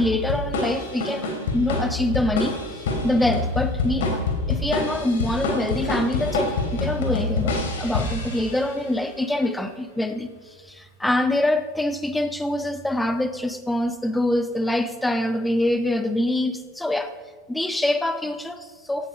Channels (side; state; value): both; normal; correlation 0.63